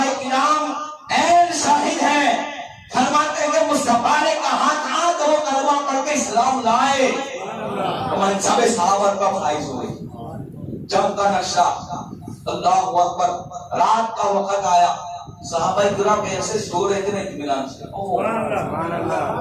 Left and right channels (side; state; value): both; identical; correlation 1.00